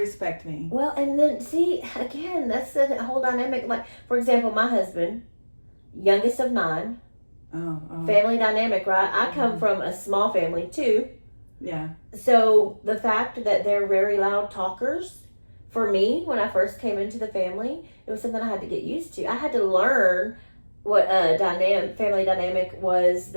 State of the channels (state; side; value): inverted; both; correlation -1.00